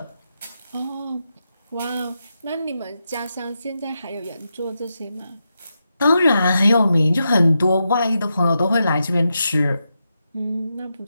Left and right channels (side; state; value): both; inverted; correlation -0.87